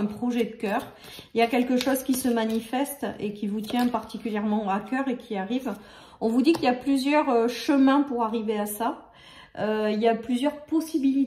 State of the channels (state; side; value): identical; both; correlation 1.00